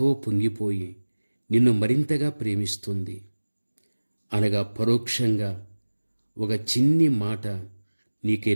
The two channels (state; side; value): inverted; both; correlation -1.00